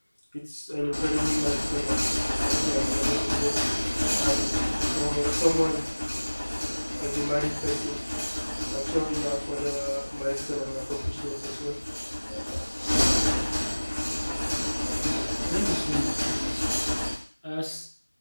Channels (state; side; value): inverted; both; correlation -1.00